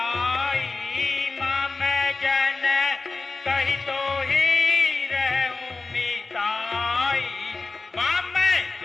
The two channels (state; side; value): quieter; right; 3.8 dB